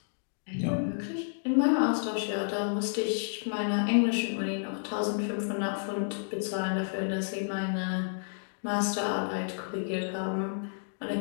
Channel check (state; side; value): silent; right; digital silence